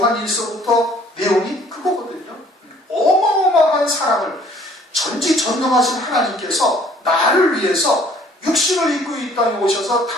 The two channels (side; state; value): both; normal; correlation 0.57